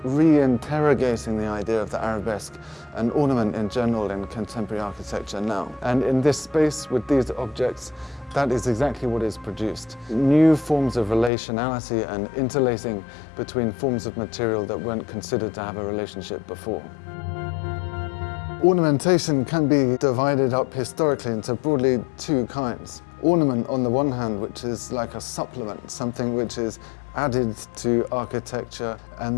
re-interrogating the idea of the arabesque and ornament in general in contemporary architecture now. And in this space, with these objects, that is exactly what is produced. New forms of relationality and interlacing between forms of material that weren't considered to have a relationship before. Ornamentation can be divided up historically into broadly two kinds. Ornament on the one hand, which is like a supplement, something which is added to architecture and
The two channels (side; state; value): right; drops out; at 11.3 s